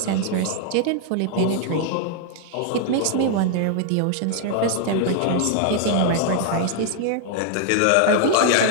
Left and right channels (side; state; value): both; different; correlation 0.00